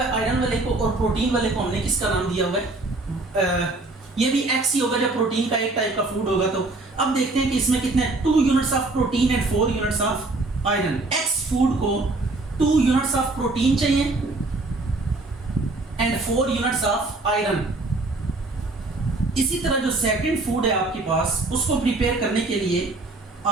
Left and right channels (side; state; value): left; quieter; 3.1 dB